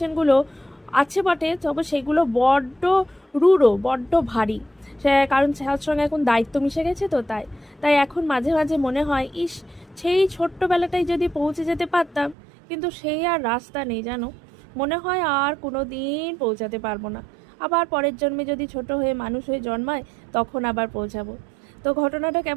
আছে বটে, তবে সেগুলো বড্ড রূঢ়, বড্ড ভারী। সে কারণ তার সঙ্গে এখন দায়িত্ব মিশে গেছে, তো তাই তাই এখন মাঝে মাঝে মনে হয়, ইস, সেই ছোট্টবেলাটাই যদি পৌঁছে যেতে পারতাম, কিন্তু সেই আর রাস্তা নেই জানো। মনে হয় আর কোনো দিন পৌঁছাতে পারবো না। আবার পরের জন্মে যদি ছোট হয়ে মানুষ হয়ে জন্মায়, তখন আবার পৌঁছাবো। তো ঘটনাটা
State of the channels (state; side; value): drops out; left; at 12.4 s